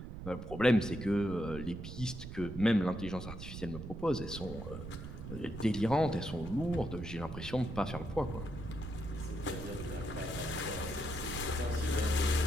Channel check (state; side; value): noise; right; rumble, 9 dB below the sound